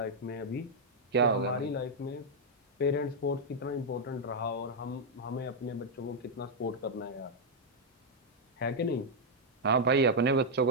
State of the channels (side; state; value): both; normal; correlation -0.02